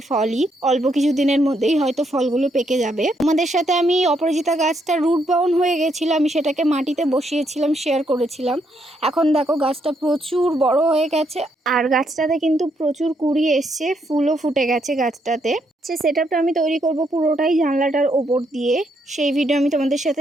ফলই অল্প কিছু দিনের মধ্যেই হয়তো ফলগুলো পেকে যাবে। তোমাদের সাথে আমি অপরাজিতা গাছটা রুট বাউন্ড হয়ে গেছিলো, আমি সেটাকে মাটিতে বসিয়েছিলাম, শেয়ার করেছিলাম। এখন দেখো গাছটা প্রচুর বড় হয়ে গেছে, আর গাছটাতে কিন্তু প্রচুর কুড়ি এসছে, ফুলও ফুটে গেছে গাছটাতে। সে সেটআপটা আমি তৈরি করব পুরোটাই জানলাটার ওপর দিয়ে, সেই ভিডিও আমি তোমাদের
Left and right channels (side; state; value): both; normal; correlation 0.75